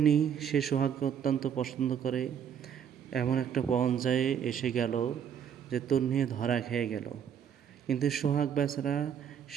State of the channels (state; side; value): quieter; left; 8.4 dB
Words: সে সোহাগকে অত্যন্ত পছন্দ করে। এমন একটা পর্যায়ে এসে গেল যে তন্নি ধরা খেয়ে গেল। কিন্তু সোহাগ বেচারা